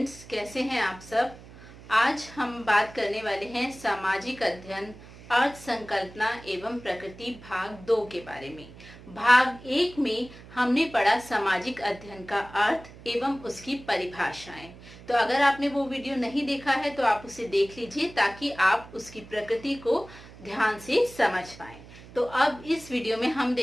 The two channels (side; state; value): right; noise; hum, 19 dB below the sound